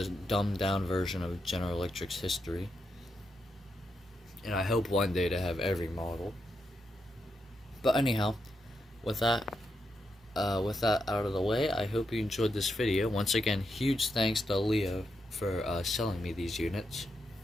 dumbed down version of General Electric's history. And I hope one day to have every model. But anyhow, with that out of the way, I hope you enjoyed this video. Once again, huge thanks to Leo for selling me these units.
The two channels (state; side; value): normal; both; correlation 0.83